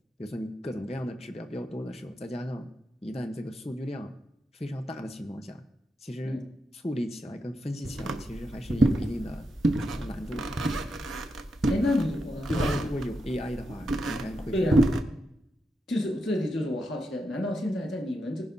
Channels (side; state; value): both; normal; correlation 0.85